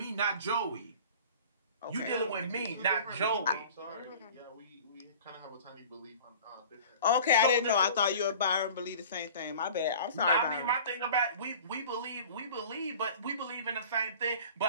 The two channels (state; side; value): inverted; both; correlation -0.43